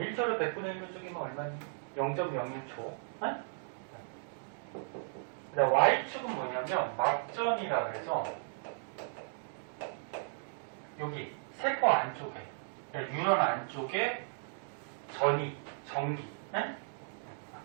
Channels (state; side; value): silent; left; digital silence